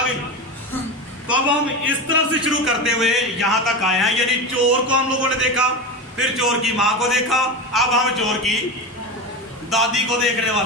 گئی؟ تو اب ہم اس طرف سے شروع کرتے ہوئے یہاں تک آئے ہیں, یعنی چور کو ہم لوگوں نے دیکھا, پھر چور کی ماں کو دیکھا, اب ہم چور کی دادی کو دیکھنے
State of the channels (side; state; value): both; normal; correlation 0.22